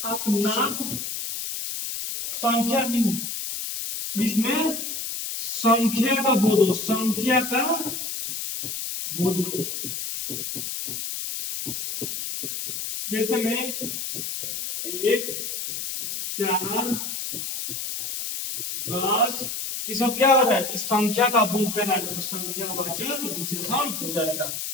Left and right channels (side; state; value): left; noise; hiss, 4 dB below the sound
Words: आप नाम, संख्या, जिसमें संख्या का बोध हो, संख्या का बोध हो। जैसे में 1, 4, 10, ये सब क्या हो रहा है, इस संख्या का बोध कर रहा है, तो संख्यावाचक विशेषण हो जाएगा।